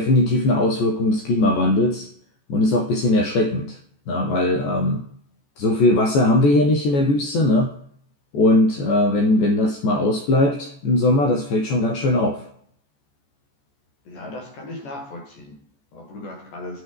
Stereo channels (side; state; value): right; late; 14 ms